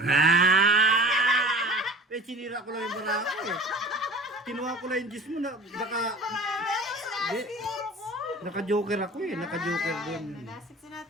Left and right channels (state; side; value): normal; both; correlation 0.42